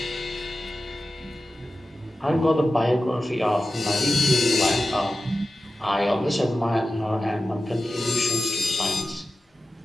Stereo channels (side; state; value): both; normal; correlation 0.93